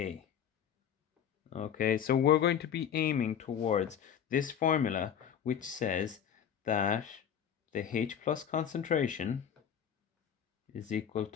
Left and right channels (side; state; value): right; quieter; 8.7 dB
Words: Okay, so we're going to be aiming towards this formula, which says that the H plus concentration is equal